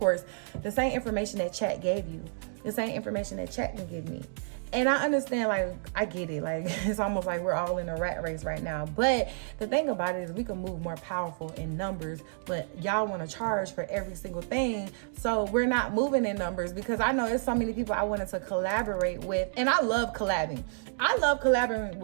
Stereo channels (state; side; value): silent; left; digital silence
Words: the same information that chat gave you, the same information that chat can give me. And I understand, like, I get it. Like, it's almost like we're all in a rat race right now. But the thing about it is we can move more powerful in numbers, but y'all want to charge for every single thing. So we're not moving in numbers because I know there's so many people I wanted to collaborate with. And I love collabing. I love collaborating